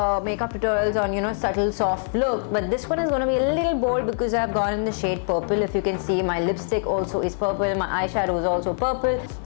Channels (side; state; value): right; silent; digital silence